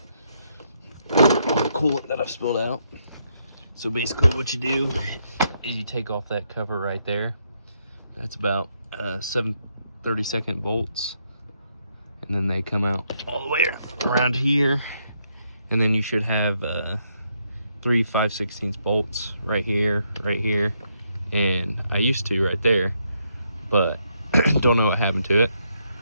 all the coolant that I've spilled out. So basically what you do is you take off that cover right there. That's about 7 32nd bolts, and then they come out all the way around here, and then you should have 3 5/16 bolts right here, and I used to right there, but don't know what happened to it.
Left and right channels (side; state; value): both; inverted; correlation -0.76